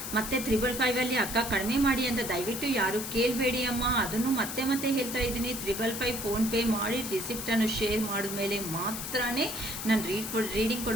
ಮತ್ತೆ 555 ಅಕ್ಕ ಕಡಿಮೆ ಮಾಡಿ ಅಂತ ದಯವಿಟ್ಟು ಯಾರು ಕೇಳಬೇಡಿ ಅಮ್ಮ. ಅದನ್ನು ಮತ್ತೆ ಹೇಳ್ತಾ ಇದ್ದೀನಿ. 555 ಫೋನ್ಪೇ ಮಾಡಿ ರಿಸಿಪ್ಟನ್ನು ಶೇರ್ ಮಾಡಿದ್ಮೇಲೆ ಮಾತ್ರ ನಾನು ರೀಡಿಂಗ್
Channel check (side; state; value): left; noise; hiss, 6 dB below the sound